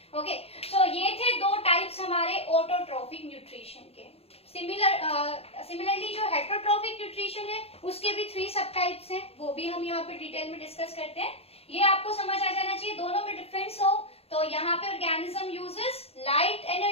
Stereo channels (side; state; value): right; late; 0.29 ms